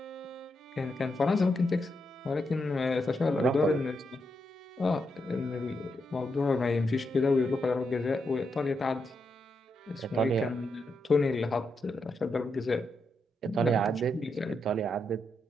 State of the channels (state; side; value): normal; both; correlation 0.83